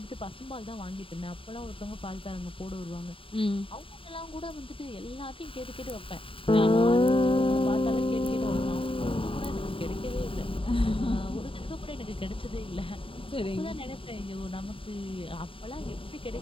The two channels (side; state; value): right; late; 0.26 ms